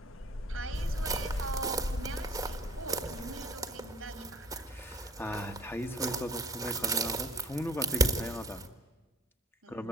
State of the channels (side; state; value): both; normal; correlation 0.49